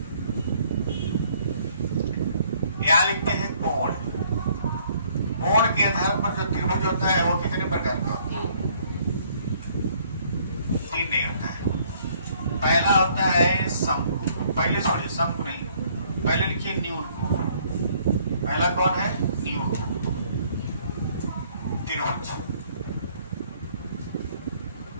यहाँ लिखते हैं कोण। कोण के आधार पर जो त्रिभुज होता है वो कितने प्रकार का होता है? 3 नहीं होता है। पहला होता है शंकु, पहले छोड़िए शंकु नहीं, पहले लिखिए न्यून। पहला कौन है? न्यून त्रिभुज।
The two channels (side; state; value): both; inverted; correlation -0.63